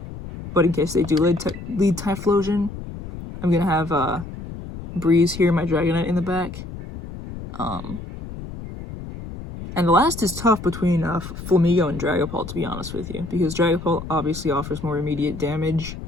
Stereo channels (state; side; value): noise; left; rumble, 11 dB below the sound